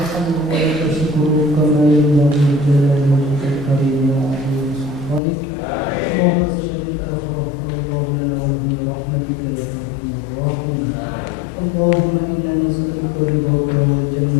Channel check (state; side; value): drops out; right; at 5.2 s